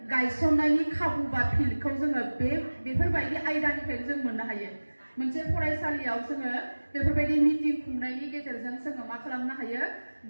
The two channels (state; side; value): inverted; both; correlation -1.00